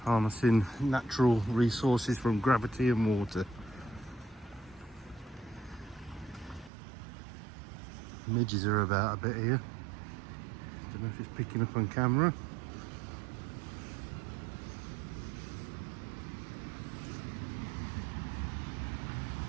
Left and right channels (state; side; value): drops out; left; at 6.7 s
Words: Harnessing natural resources from gravity and water. Midges are about a bit here. Don't know if it's picking up on camera.